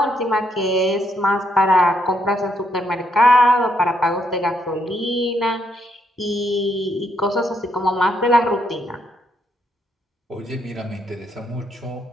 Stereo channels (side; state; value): both; normal; correlation 0.75